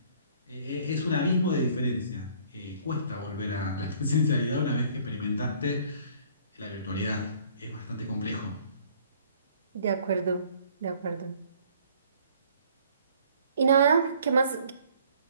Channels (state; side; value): inverted; both; correlation -0.57